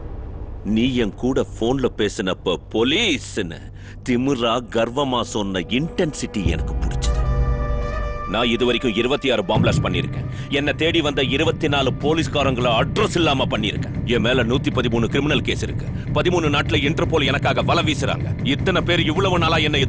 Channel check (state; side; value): identical; both; correlation 1.00